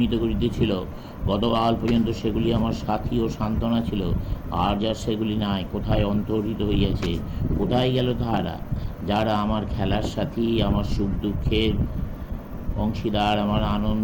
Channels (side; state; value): both; identical; correlation 1.00